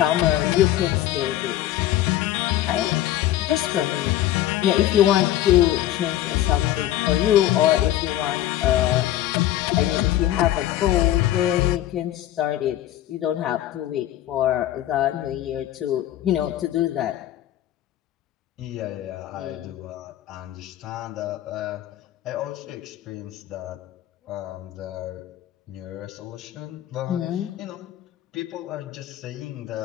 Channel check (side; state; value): right; quieter; 13.3 dB